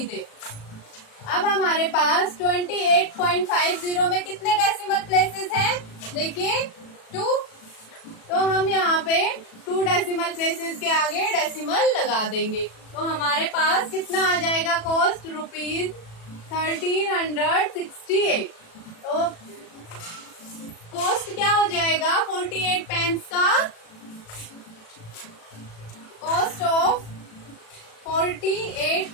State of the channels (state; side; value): late; right; 37 ms